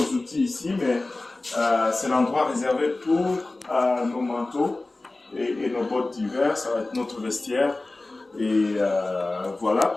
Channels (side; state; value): right; quieter; 3.0 dB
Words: outils ici, mais c'est l'endroit réservé pour nos manteaux et nos bottes d'hiver. Ça va être notre vestiaire. Et